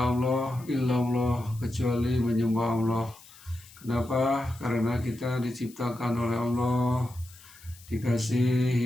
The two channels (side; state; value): left; noise; hiss, 22 dB below the sound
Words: illallah, kecuali menyembah Allah. Kenapa? Karena kita diciptakan oleh Allah, dikasih